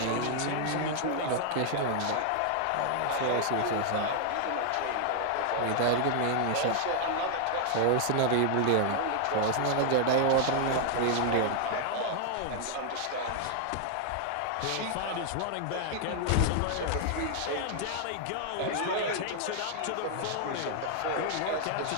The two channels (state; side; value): different; both; correlation 0.00